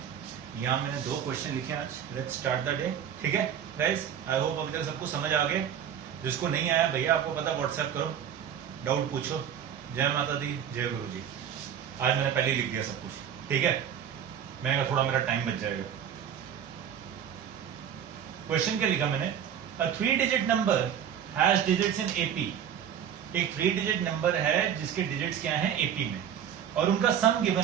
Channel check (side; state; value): left; quieter; 8.9 dB